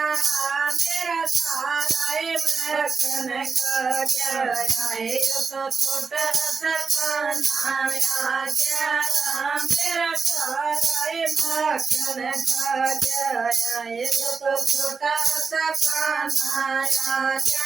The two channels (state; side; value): quieter; left; 5.0 dB